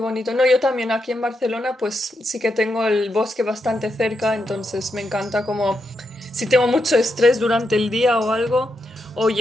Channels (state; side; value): normal; both; correlation 0.83